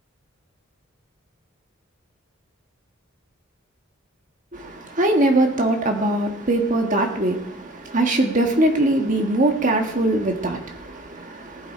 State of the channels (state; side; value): normal; both; correlation 0.49